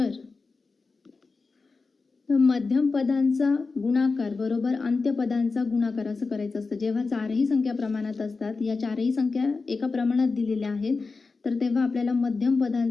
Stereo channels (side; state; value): right; quieter; 4.2 dB